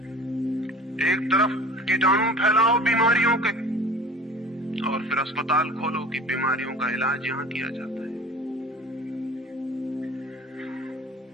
एक तरफ कीटाणु फैलाओ बीमारियों के, और फिर अस्पताल खोलो कि बीमारियों का इलाज यहां किया जाता है।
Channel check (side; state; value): both; normal; correlation 0.43